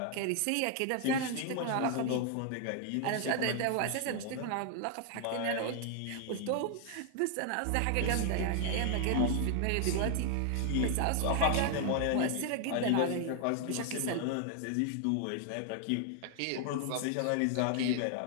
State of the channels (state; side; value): different; both; correlation 0.00